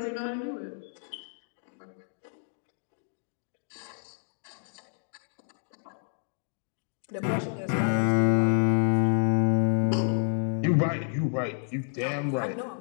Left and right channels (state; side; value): silent; right; digital silence